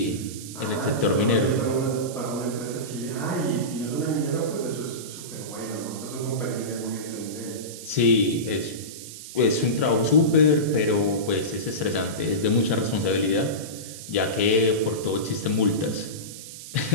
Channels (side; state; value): right; noise; hiss, 13 dB below the sound